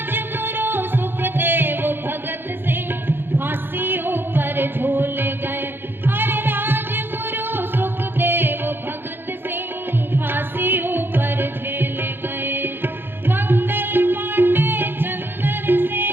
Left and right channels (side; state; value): left; late; 0.10 ms